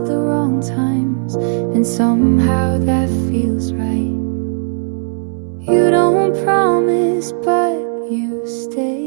the wrong times, and somehow that feels right. You don't promise, but you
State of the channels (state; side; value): silent; left; 69 dB below the other